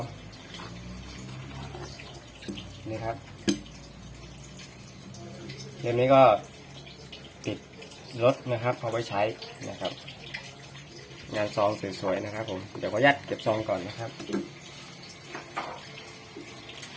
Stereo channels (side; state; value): both; identical; correlation 1.00